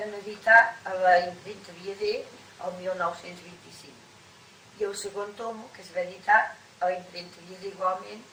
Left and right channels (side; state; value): both; identical; correlation 1.00